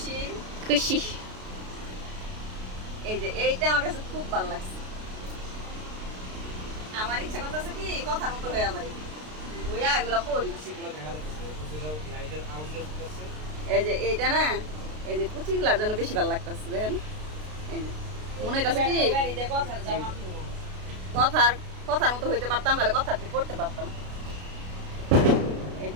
খুশি। এই যে এইটা আমার কাছে খুব ভালো লাগছে। আমার ইচ্ছা করতেছে কি কথার মতো হয়ে যাবে, হইয়া এগুলো পড়ি। এই যে এইটা না, এই যে কুচিগুলার জন্য বেশি ভালো লাগতেছে। দেখেন এই যে মনে হইতেছে কি কথার কথার মতো হইতে পারতাম, তাহলে কথাটি পড়তে পারতাম। এই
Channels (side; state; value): left; late; 33 ms